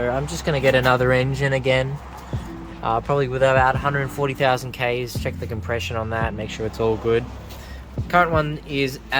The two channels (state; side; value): identical; both; correlation 1.00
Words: just going to get another engine again, probably with about 140,000 Ks, check the compression on that, make sure it's all good. Current one is